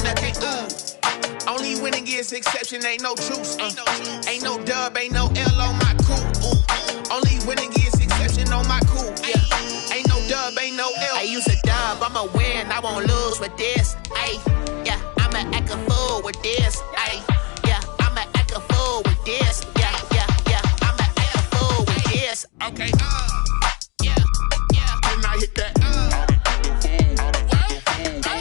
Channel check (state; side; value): quieter; right; 30.5 dB